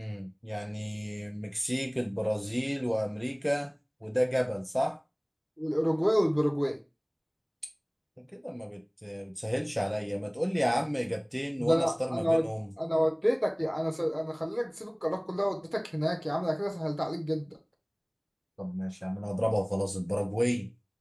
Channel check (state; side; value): identical; both; correlation 1.00